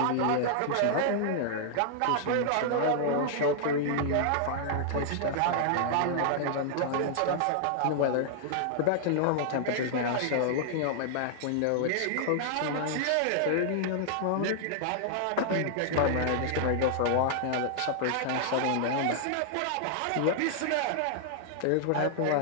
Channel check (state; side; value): different; both; correlation -0.01